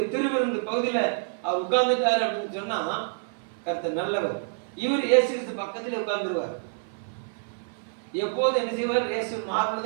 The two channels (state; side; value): silent; left; 55 dB below the other